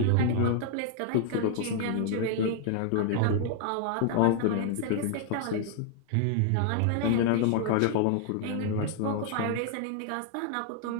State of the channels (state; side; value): different; both; correlation -0.01